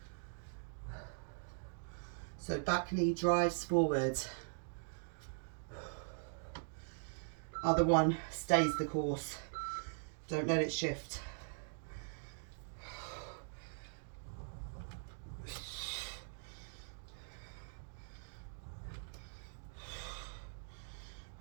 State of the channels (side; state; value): left; silent; digital silence